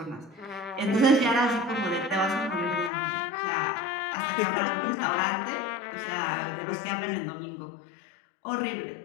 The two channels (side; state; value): right; drops out; at 2.9 s